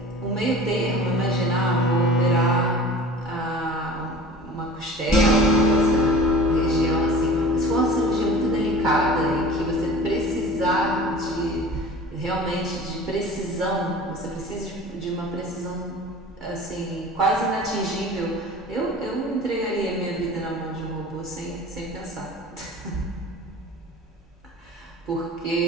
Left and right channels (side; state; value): both; normal; correlation 0.41